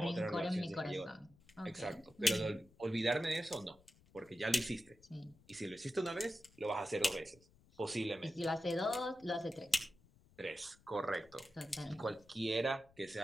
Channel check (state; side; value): noise; left; rumble, 28 dB below the sound